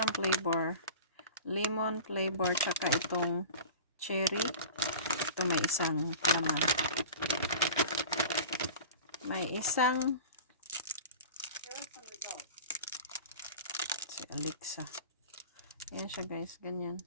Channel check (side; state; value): both; inverted; correlation -0.37